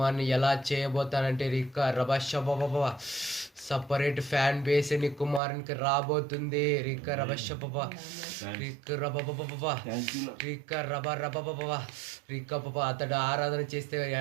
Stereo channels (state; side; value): drops out; left; at 5.4 s